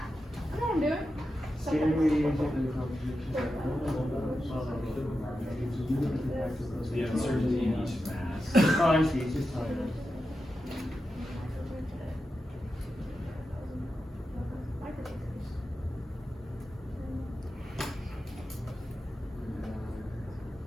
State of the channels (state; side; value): normal; both; correlation 0.90